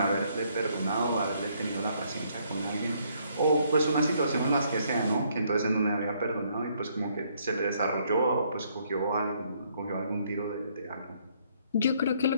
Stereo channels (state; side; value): inverted; both; correlation -0.68